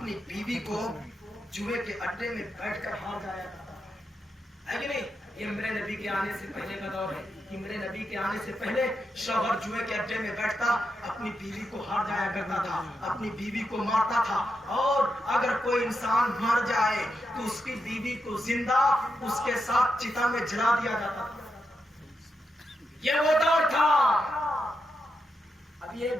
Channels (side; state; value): both; normal; correlation 0.85